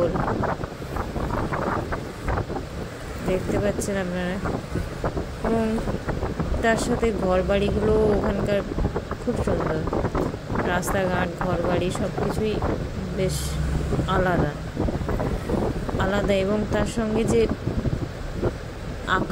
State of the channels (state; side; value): identical; both; correlation 1.00